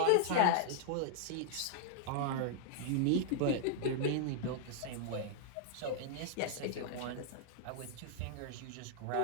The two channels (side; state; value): both; different; correlation -0.01